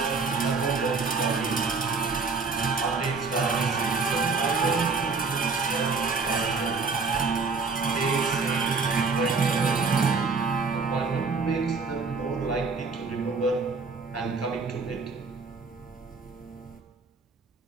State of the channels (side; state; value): left; quieter; 4.5 dB